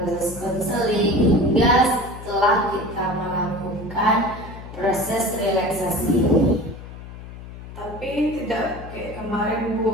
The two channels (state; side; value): noise; left; hum, 13 dB below the sound